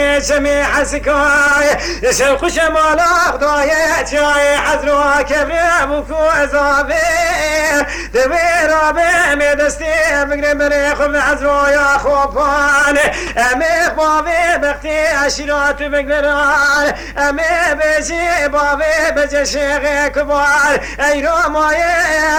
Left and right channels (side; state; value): both; identical; correlation 1.00